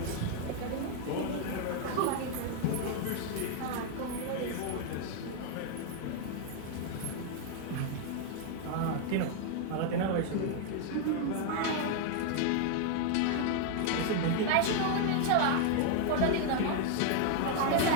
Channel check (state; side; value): different; both; correlation 0.00